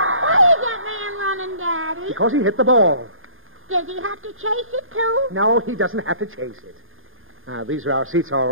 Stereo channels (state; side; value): late; left; 0.59 ms